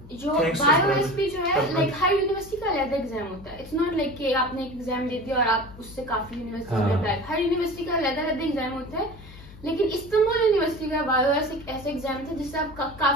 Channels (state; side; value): noise; left; hum, 18 dB below the sound